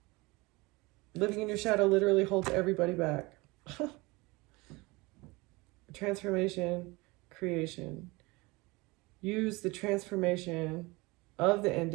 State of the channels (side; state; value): left; quieter; 24.0 dB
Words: Living in your shadow literally holds everybody back. Transformation, creation. Use the transformation of the